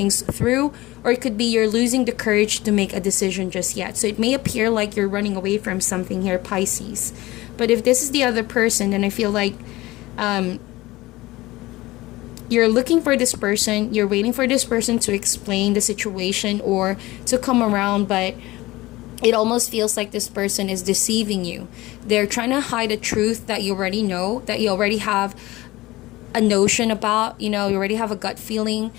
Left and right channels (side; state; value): right; quieter; 19.1 dB